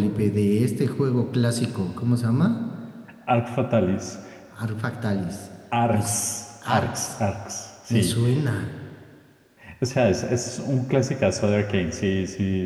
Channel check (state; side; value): identical; both; correlation 1.00